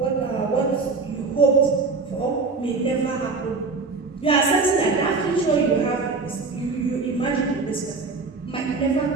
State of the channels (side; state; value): left; quieter; 4.1 dB